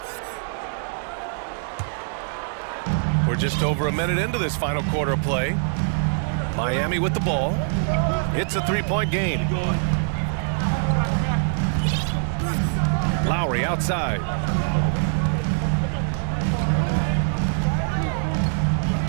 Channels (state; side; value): silent; left; digital silence